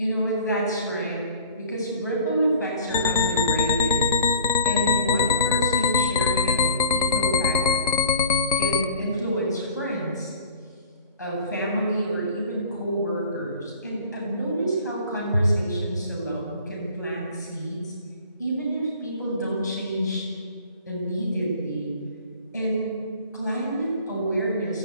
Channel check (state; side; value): inverted; both; correlation -0.48